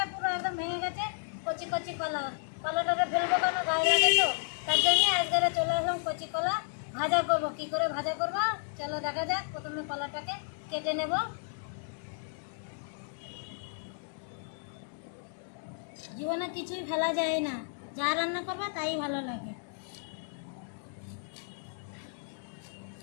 পুরো একদম ভেঙে গেছে। কচি কচি কলা, কলাটাকে ফেলবো কেন, গায়ে লাগে তো, তার জন্য আজকে চলে আসলাম কচি কলা ভাজা করবো। কি করে ভাজা করবো চলো দেখা যাক। প্রথমে কলাটাকে কেটে নেব। জীবনে কিছুই ফেলা যায় না, যা রান্না করবে তাই ভালো লাগে।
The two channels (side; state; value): right; silent; digital silence